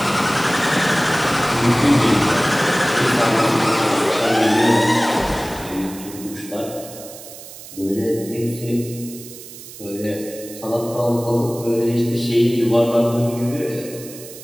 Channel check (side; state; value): right; noise; hiss, 15 dB below the sound